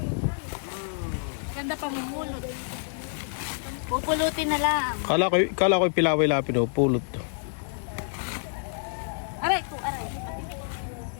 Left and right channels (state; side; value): silent; right; 59 dB below the other